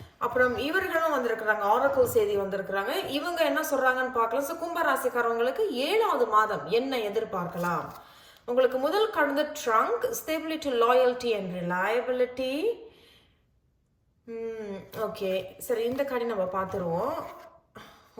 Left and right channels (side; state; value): both; identical; correlation 1.00